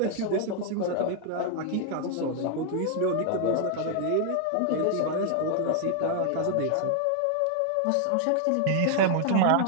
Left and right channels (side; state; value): both; different; correlation 0.00